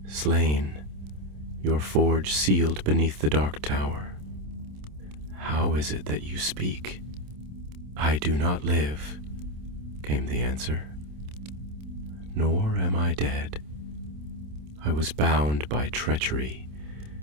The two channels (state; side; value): late; left; 27 ms